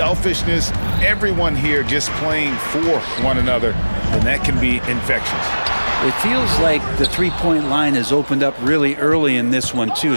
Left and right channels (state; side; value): inverted; both; correlation -1.00